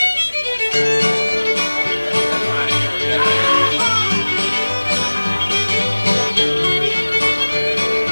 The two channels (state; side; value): inverted; both; correlation -1.00